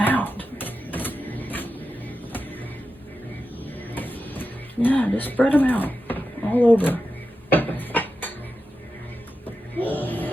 Yeah, just spread them out all over.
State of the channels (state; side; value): normal; both; correlation 0.90